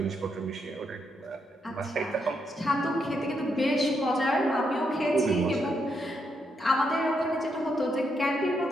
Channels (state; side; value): normal; both; correlation 0.79